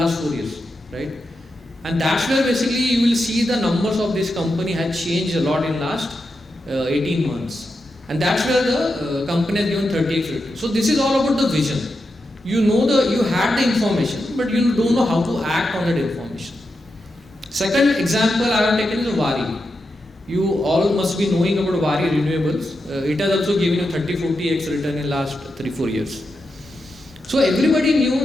4 years, right? And that's where basically you will see the numbers of this company had changed a lot in last 18 months. And that's where the company has given 30x return. So this is all about the vision. You had the information, but you don't know how to act on that information. Second example I have taken is WIRC. You all must be knowing about WIRC renewables. It has also given you 30-40x return in last 3-4 years. So everybody knew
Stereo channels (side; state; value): both; normal; correlation 0.87